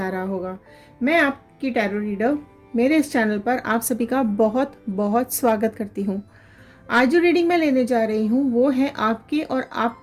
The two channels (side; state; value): both; identical; correlation 1.00